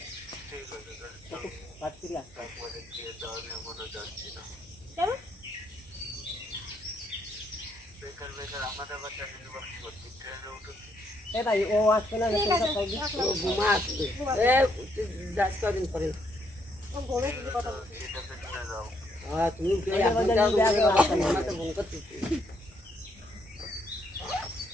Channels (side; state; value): both; normal; correlation 0.73